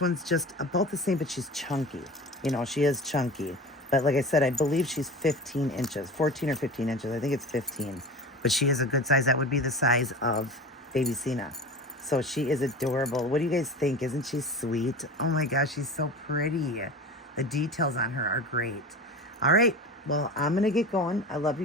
just about the same, but she's chunky. You know, she is chunky. But like I said, I believe she's 15 inches, 14 or 15 inches. I think it's 15. But she is a good size. That would be the size of baby Cena. So she is adorable. What do you guys think? Isn't she sweet? Oh my gosh, she's so pretty. The details on her are great. All right. Well, I'm going to get going. I love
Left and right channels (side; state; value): both; normal; correlation 0.33